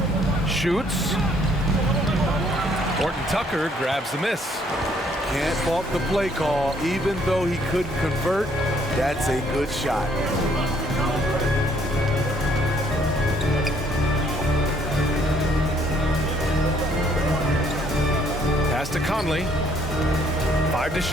Shoots. Horton Tucker grabs the miss. Can't fault the play call. Even though he couldn't convert, that's a good shot. Pass to Conley. 5 to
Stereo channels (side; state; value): both; normal; correlation 0.65